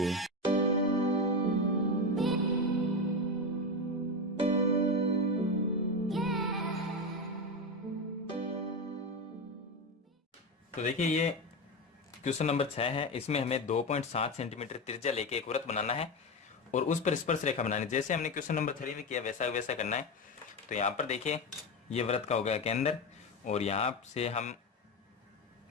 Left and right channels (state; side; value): normal; both; correlation 0.16